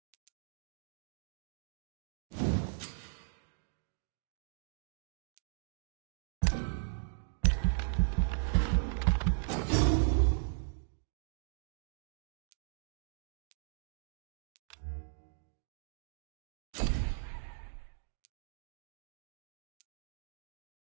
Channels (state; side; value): silent; left; digital silence